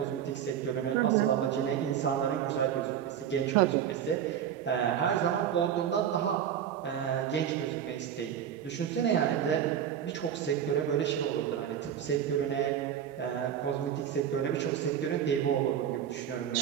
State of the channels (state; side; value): quieter; left; 9.3 dB